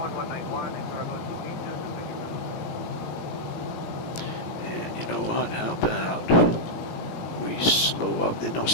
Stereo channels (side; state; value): right; late; 17 ms